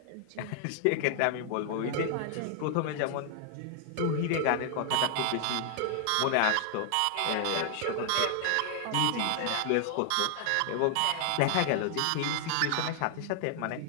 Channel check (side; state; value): both; different; correlation 0.00